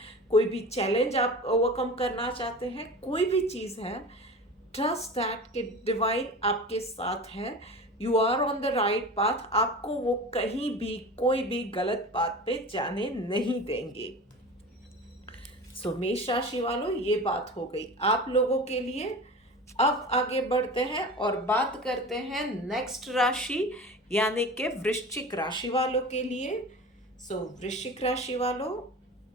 कोई भी चैलेंज आप ओवरकम करना चाहते हैं, कोई भी चीज़ है, ट्रस्ट दैट कि डिवाइन आपके साथ है। You are on the right path. आपको वो कहीं भी कोई भी गलत पाथ पे जाने नहीं देंगे। सो मेष राशि वालों, ये बात हो गई आप लोगों के लिए। अब आगे बढ़ते हैं और बात करते हैं नेक्स्ट राशि यानी कि वृश्चिक राशि वालों के लिए। सो वृश्चिक राशि वालों,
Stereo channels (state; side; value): normal; both; correlation 0.34